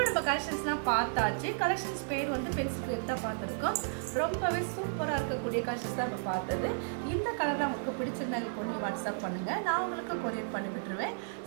நம்ம கலெக்ஷன்ஸ்லாம் பார்த்தாச்சு. கலெக்ஷன்ஸ் பேர் வந்து பென்சில் கிரேப் தான் பார்த்துருக்கோம். ரொம்பவே சூப்பராக இருக்கக்கூடிய கலெக்ஷன்ஸ் தான் நம்ம பார்த்தது. இந்த கலர் உங்களுக்கு பிடிச்சிருந்தா இப்போ நீங்கள் வாட்ஸ்அப் பண்ணுங்கள், நான் உங்களுக்கு கொரியர் பண்ணி விட்டுருவேன்.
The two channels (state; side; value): silent; left; digital silence